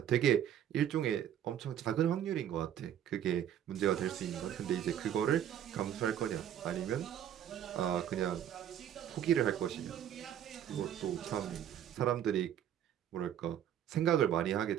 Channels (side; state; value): left; quieter; 10.3 dB